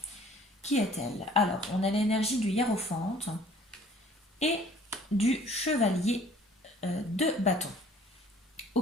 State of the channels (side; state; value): both; normal; correlation 0.54